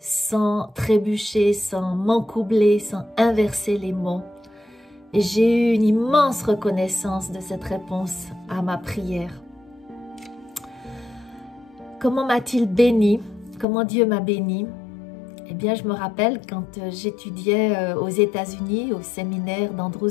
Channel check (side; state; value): right; drops out; at 13.7 s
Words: trébucher, sans m'encoubler, sans inverser les mots. Et j'ai eu une immense reconnaissance de cette réponse à ma prière. Comment m'a-t-il béni? Comment Dieu m'a béni? Eh bien, je me rappelle quand j'étudiais aux États-Unis, au séminaire